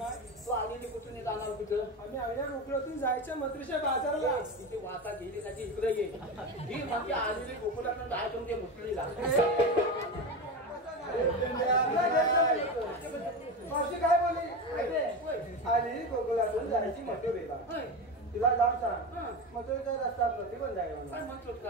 तू आलेली कुठून जाणार तिथं. आम्ही आईला गोकुळातून जायचं मत्रीच्या बाजाराला. तिथे वाता गेली त्याची इकडे ये ही म्हणजे आलेली गोकुळातून जायचं ते मुसलीला. मावशी काय बोलली आली गोकुळातून जायची मथुरेला. तिला जाऊन सांग मथुरेचा रस्ता प्रति पण जाय काय म्हणतो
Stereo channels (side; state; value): both; normal; correlation 0.21